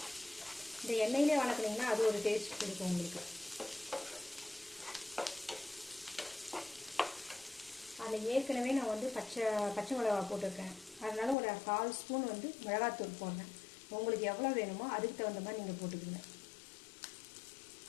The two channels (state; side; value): drops out; right; at 11.4 s